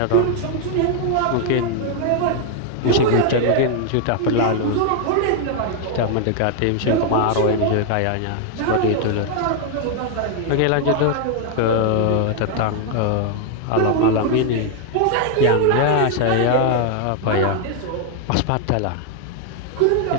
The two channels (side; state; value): both; different; correlation 0.00